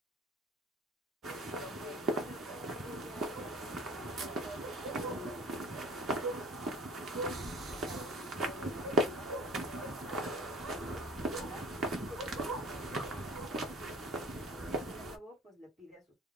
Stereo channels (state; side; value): normal; both; correlation 0.45